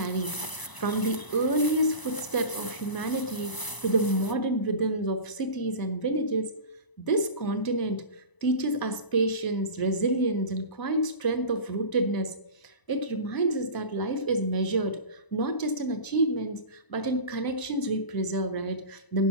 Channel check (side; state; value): right; late; 1.0 ms